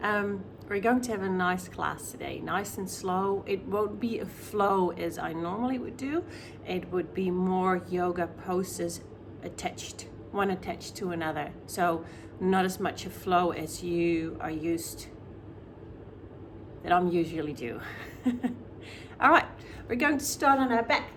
We're going to have a nice class today, nice and slow. It won't be a flow as I normally would do. It would be more yoga poses one attached to another. So not as much a flow as you are used, that I'm usually do. All right, we're going to start on our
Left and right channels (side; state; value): both; identical; correlation 1.00